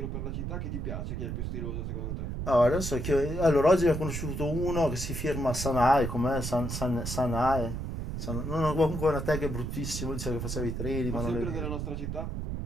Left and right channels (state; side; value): noise; right; rumble, 4 dB below the sound